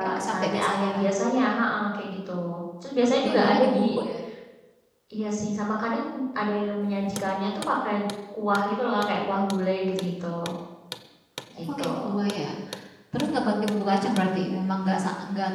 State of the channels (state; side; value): identical; both; correlation 1.00